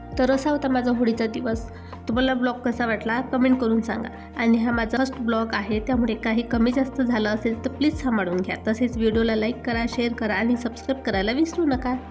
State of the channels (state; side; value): identical; both; correlation 1.00